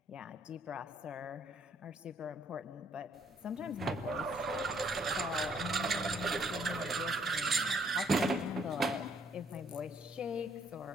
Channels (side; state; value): both; normal; correlation 0.67